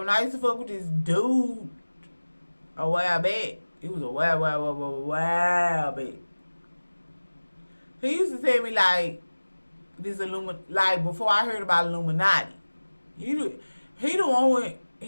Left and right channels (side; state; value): both; inverted; correlation -1.00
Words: I used to fuck with this dude a while back, it was a while back. He used to tell me like this like before I heard about Illuminati. He the one